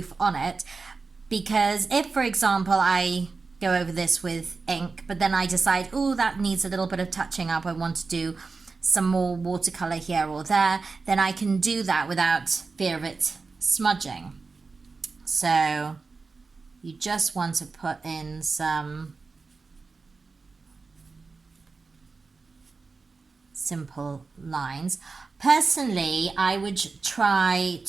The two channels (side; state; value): left; quieter; 4.3 dB